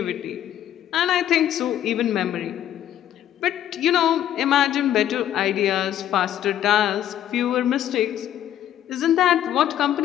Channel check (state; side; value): quieter; right; 11.4 dB